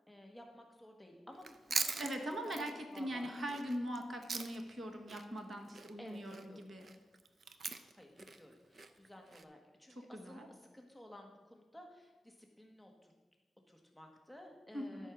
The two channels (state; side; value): normal; both; correlation 0.87